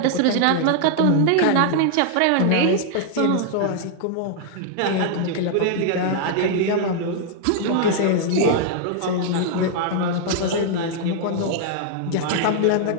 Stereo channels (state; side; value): different; both; correlation 0.00